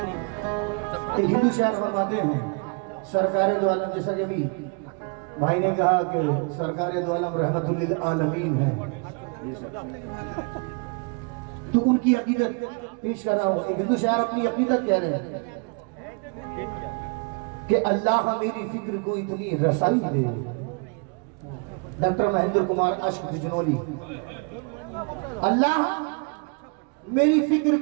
हिंदू शायर फरमाते हैं, सरकार दो आलम, जैसा कि अभी भाई ने कहा कि सरकार दो आलम रहमतुल लिल आलमीन है, तो उनकी अकीदत पेश कर रहा हूँ। एक हिंदू शायर अपनी अकीदत कह रहे हैं कि अल्लाह मेरी फिक्र को इतनी रसाई दे। डॉक्टर महेंद्र कुमार अश्क बिजनौली। अल्लाह मेरी फिक्र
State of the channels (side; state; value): left; quieter; 34.9 dB